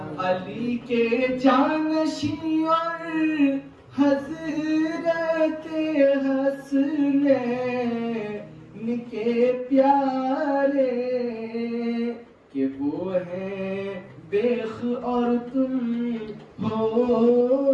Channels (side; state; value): both; identical; correlation 1.00